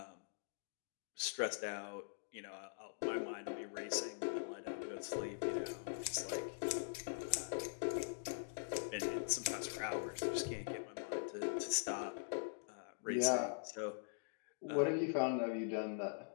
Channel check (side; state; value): right; silent; digital silence